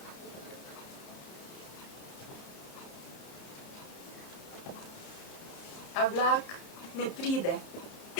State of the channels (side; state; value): right; late; 30 ms